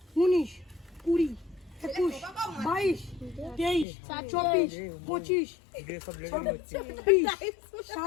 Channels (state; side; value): drops out; right; at 3.9 s